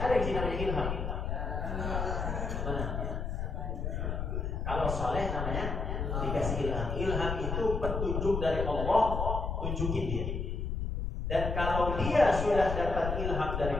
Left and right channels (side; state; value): left; noise; rumble, 2 dB below the sound